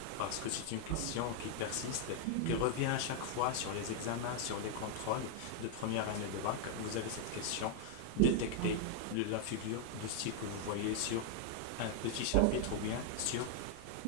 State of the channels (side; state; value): both; different; correlation 0.00